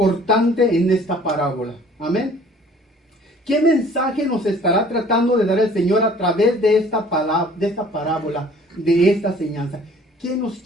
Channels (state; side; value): normal; both; correlation 0.52